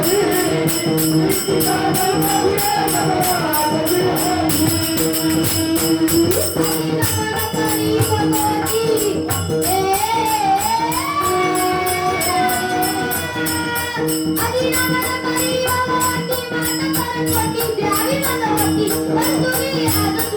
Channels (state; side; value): identical; both; correlation 1.00